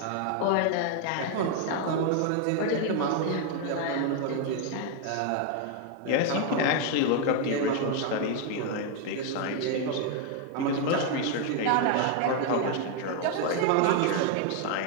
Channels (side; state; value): both; different; correlation 0.01